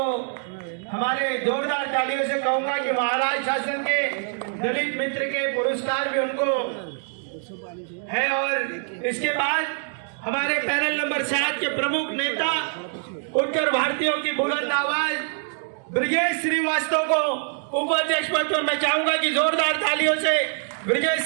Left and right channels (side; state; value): left; silent; 57 dB below the other